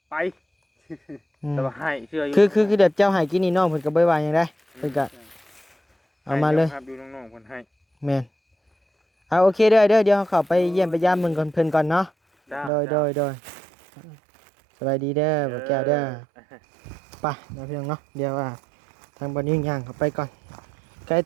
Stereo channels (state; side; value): drops out; left; at 12.7 s